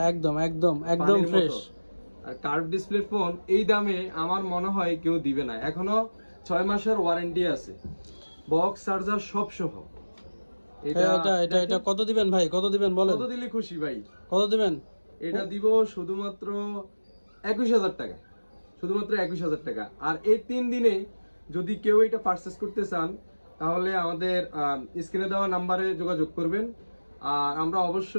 একদম একদম একদম পানির ফ্রেশ। মতো। আর কার্ভ ডিসপ্লে ফোন এই দামে আমার মনে হয় কেউ দিবে না। এখনো 6 মাসের ওয়ারেন্টি আছে, বক্স চার্জার সব সহ। এটা এটা এটা কত দিবেন ভাই, কত দিবেন বলেন? কত দিলে খুশি ভাই? কত দিবেন? এটা দিব শুধুমাত্র 21,000 টাকা, শুধুমাত্র 21,000 টাকা। আর এই 3 দিনে যদি কেউ এটা পারচেস করতে চান তাহলে আমাদের স্ক্রিনে দেওয়া নাম্বারে যোগাযোগ করবেন। আর আমরা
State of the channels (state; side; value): inverted; both; correlation -1.00